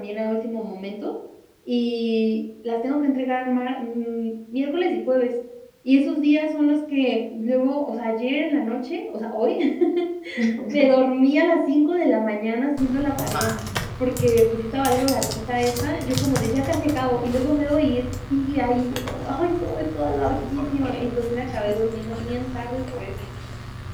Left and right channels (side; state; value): both; identical; correlation 1.00